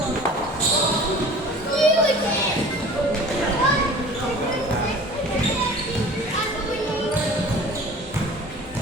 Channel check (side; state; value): both; normal; correlation 0.43